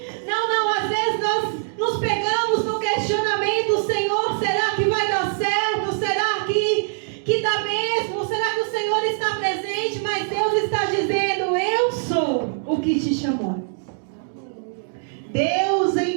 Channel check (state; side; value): silent; left; digital silence